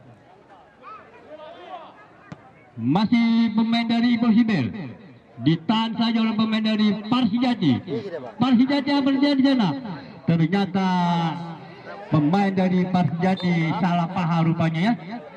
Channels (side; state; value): both; identical; correlation 1.00